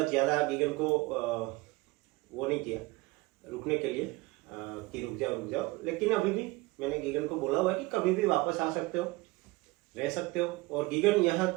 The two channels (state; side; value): quieter; left; 22.3 dB